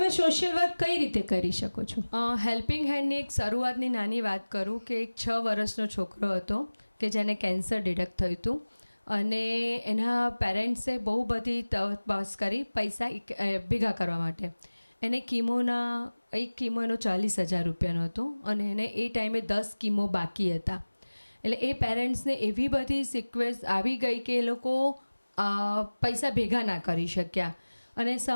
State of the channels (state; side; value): inverted; both; correlation -1.00